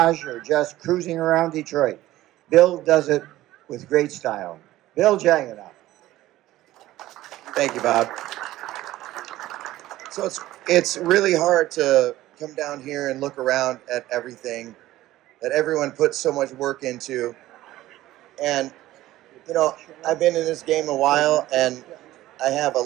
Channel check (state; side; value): quieter; left; 15.5 dB